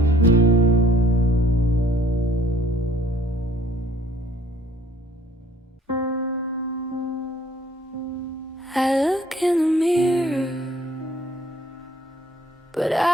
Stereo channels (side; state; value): both; normal; correlation 0.58